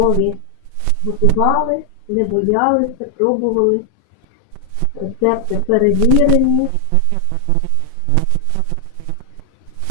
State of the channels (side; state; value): both; different; correlation 0.00